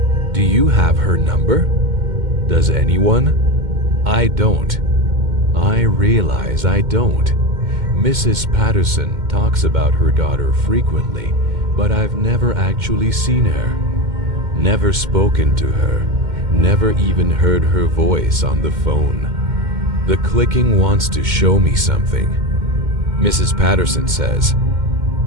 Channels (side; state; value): left; late; 2.1 ms